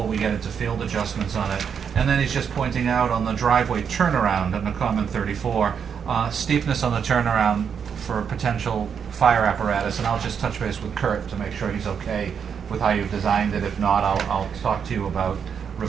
we get into field adjustments on it. And then he's just pointing out on the driveway turnaround in the comment 34, steepness on the turnaround for potential fire apparatus, and I'll just touch base with Kurt to make sure he's okay with how you've designed it. If not, I'll talk to you about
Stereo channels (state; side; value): quieter; left; 7.2 dB